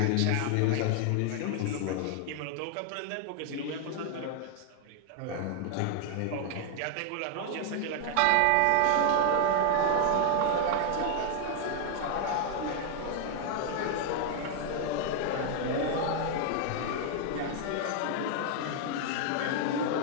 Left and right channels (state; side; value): different; both; correlation 0.00